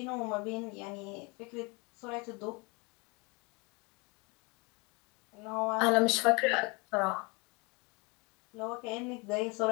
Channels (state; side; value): quieter; right; 28.8 dB